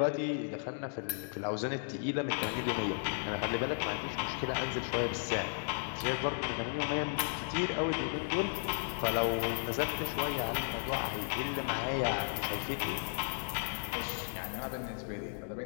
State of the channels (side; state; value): right; silent; digital silence